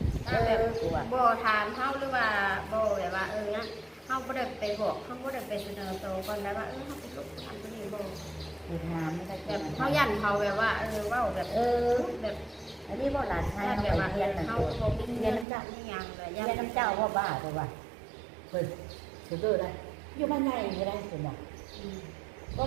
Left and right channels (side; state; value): left; drops out; at 15.5 s